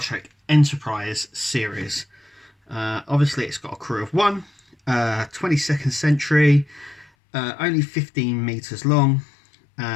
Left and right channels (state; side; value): drops out; right; at 7.1 s